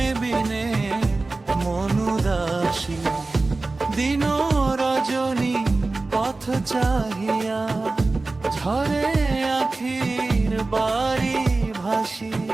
বিনে মন উদাসী। দিন রজনী পথ চাহিয়া, ঝরে আখির বাড়ি ভাসি।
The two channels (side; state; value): left; quieter; 3.4 dB